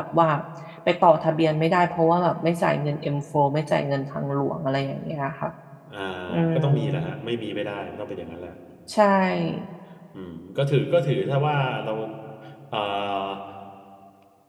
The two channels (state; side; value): identical; both; correlation 1.00